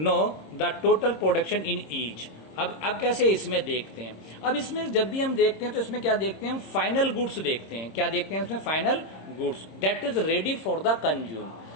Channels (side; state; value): right; late; 26 ms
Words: the total production in each. अब कैसे इसमें देखते हैं। अब इसमें जब भी हम देखते हैं तो इसमें क्या देखते हैं, हम फाइनल गुड्स देखते हैं। क्या देखते हैं इसमें, final goods that is ready for the consume.